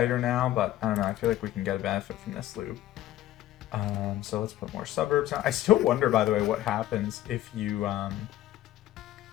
her now, but I don't know. I feel like we can get a benefit from this loop. So let's put more suburbs on. I still wonder, by the way, what happens if you...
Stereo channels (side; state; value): right; quieter; 13.9 dB